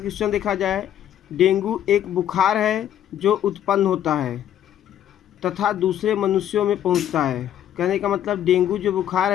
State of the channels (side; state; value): right; quieter; 10.9 dB